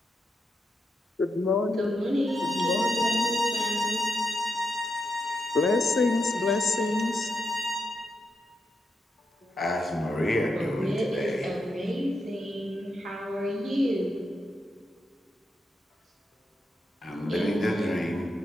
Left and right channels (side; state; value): both; normal; correlation 0.84